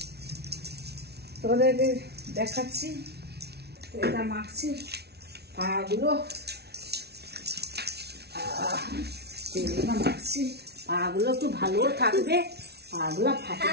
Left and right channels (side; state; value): left; late; 0.48 ms